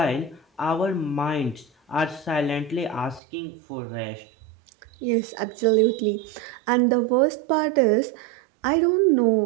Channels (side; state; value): left; drops out; at 3.2 s